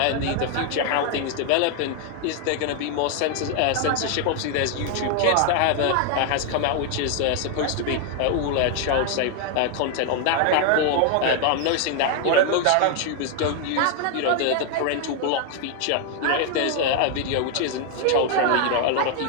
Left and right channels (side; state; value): both; different; correlation 0.00